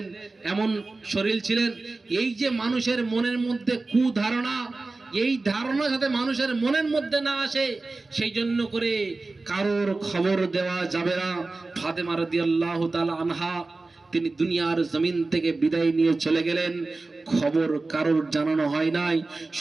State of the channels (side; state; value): left; quieter; 3.4 dB